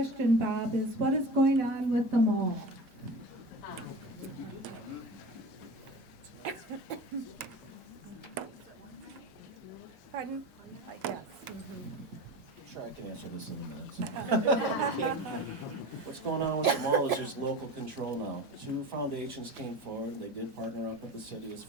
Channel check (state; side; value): normal; both; correlation 0.32